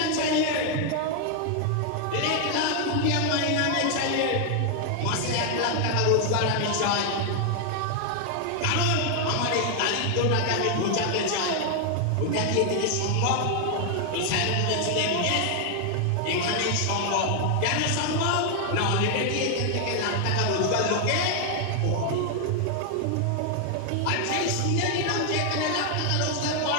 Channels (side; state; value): both; different; correlation 0.00